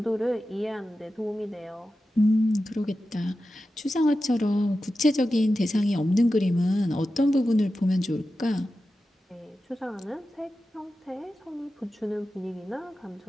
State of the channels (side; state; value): both; normal; correlation 0.92